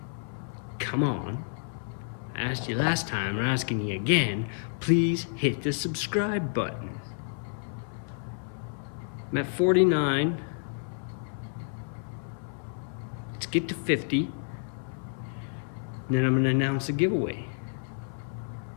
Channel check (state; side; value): silent; right; 58 dB below the other